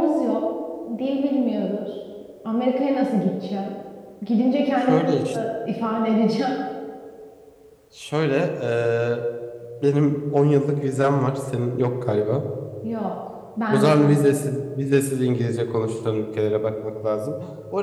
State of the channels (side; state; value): both; identical; correlation 1.00